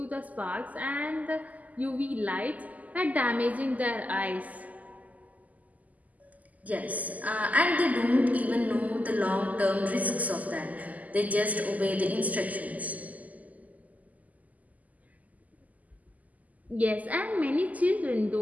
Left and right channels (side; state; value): left; late; 0.077 ms